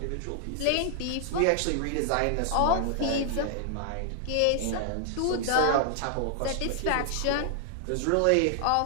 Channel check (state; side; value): different; both; correlation 0.00